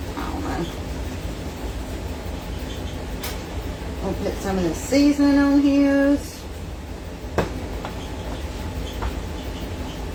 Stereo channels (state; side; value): identical; both; correlation 1.00